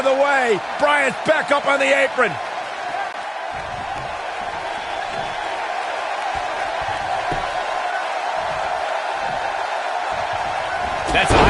the way. Bryan's back up on the apron. That's a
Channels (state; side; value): identical; both; correlation 1.00